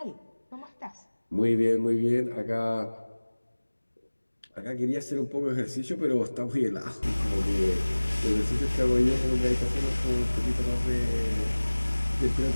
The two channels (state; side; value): inverted; both; correlation -1.00